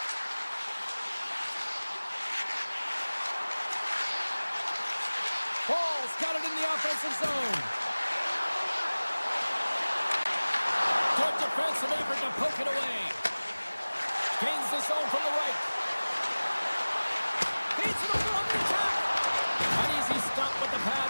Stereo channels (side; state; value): both; inverted; correlation -1.00